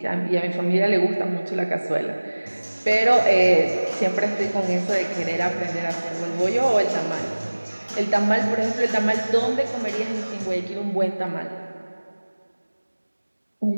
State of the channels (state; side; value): inverted; both; correlation -1.00